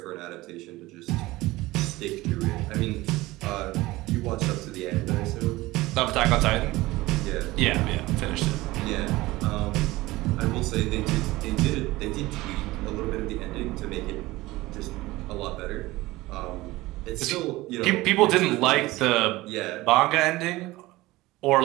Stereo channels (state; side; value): quieter; left; 19.2 dB